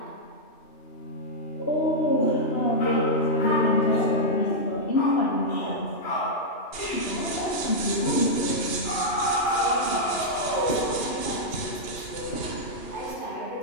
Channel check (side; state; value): right; late; 2.9 ms